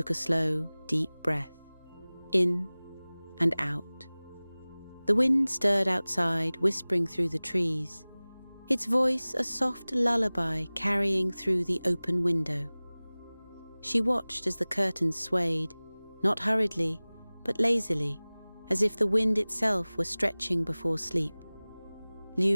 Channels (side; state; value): both; inverted; correlation -0.99